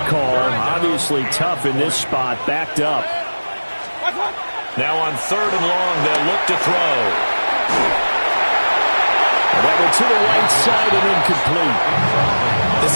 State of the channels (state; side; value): inverted; both; correlation -1.00